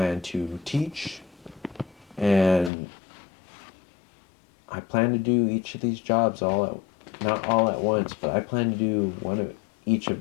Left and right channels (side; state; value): right; drops out; at 2.7 s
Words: to teach, and I plan to do each of these jobs not all at once, but I plan to do one of each of